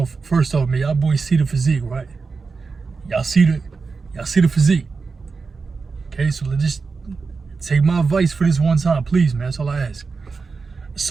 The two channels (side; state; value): left; quieter; 4.6 dB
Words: First off, man, y'all boys see the physique, right? Y'all see the physique. Okay, so let's just take my advice for this one time, please, man. That's all I ask.